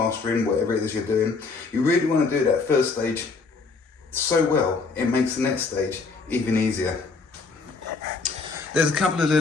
whatever it is you're doing, you really want to do that first stage so well, it makes the next stage even easier. There's a couple of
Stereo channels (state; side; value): quieter; right; 4.3 dB